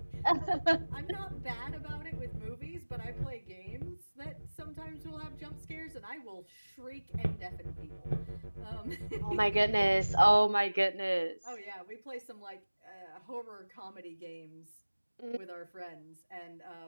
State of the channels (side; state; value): both; inverted; correlation -1.00